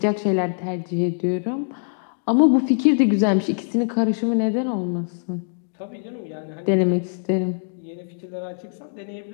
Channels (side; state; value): right; silent; digital silence